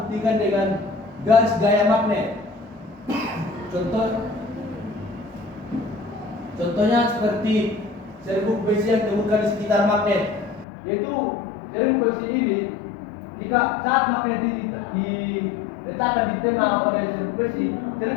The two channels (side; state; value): right; drops out; at 10.7 s